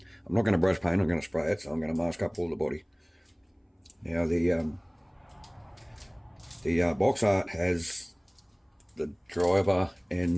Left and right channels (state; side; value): identical; both; correlation 1.00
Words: not going to brush paint, I'm going to spray it, so I'm going to mask up all the body. Now the box art has the driver